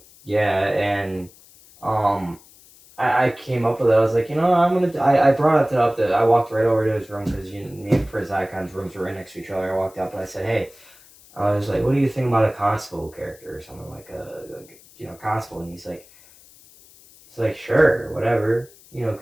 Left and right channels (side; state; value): left; noise; hiss, 25 dB below the sound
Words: Yeah, and I I came up with it. I was like, I brought it up. I walked right over to his room because me and Prince Icon's rooms were right next to each other. I walked up and I said, hey, I was like, what do you think about a constable character or something like constable? And he's like, sure, whatever,